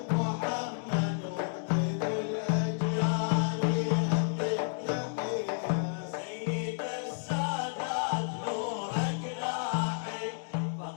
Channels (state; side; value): silent; right; digital silence